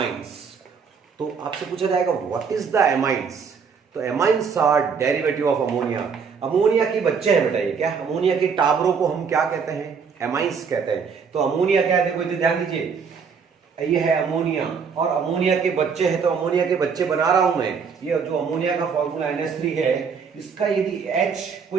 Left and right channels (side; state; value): left; quieter; 6.0 dB